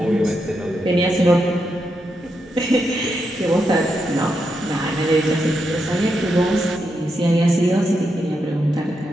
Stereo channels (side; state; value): both; normal; correlation 0.83